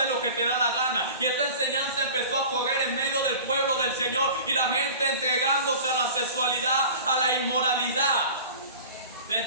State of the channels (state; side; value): inverted; both; correlation -0.39